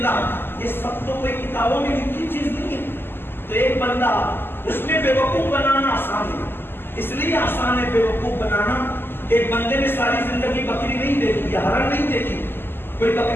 یہ سب تو کوئی کتابوں میں لکھی چیز نہیں ہے. تو ایک بندہ اس میں بے وقوف بنانا آسان ہے, اس لیے آسان ہے بے وقوف بنانا. ایک بندے نے ساری زندگی بکری نہیں دیکھی یا ہرن نہیں دیکھی, کوئی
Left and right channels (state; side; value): late; right; 0.10 ms